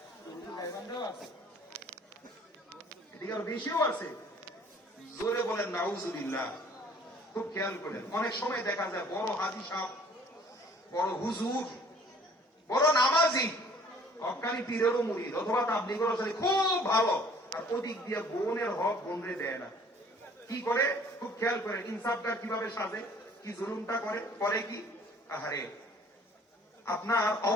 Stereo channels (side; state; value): both; normal; correlation 0.54